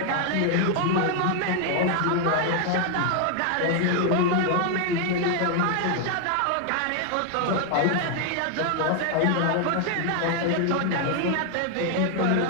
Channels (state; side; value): different; both; correlation 0.01